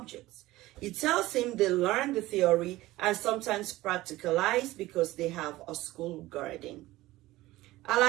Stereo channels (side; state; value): left; quieter; 17.8 dB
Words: He tells him they learn the theory and sometimes practicalize because they have a school garden.